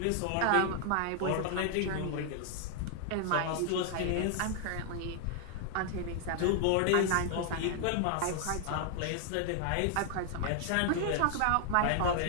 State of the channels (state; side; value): different; both; correlation 0.00